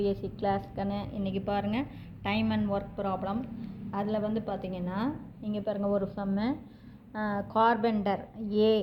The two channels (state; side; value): identical; both; correlation 1.00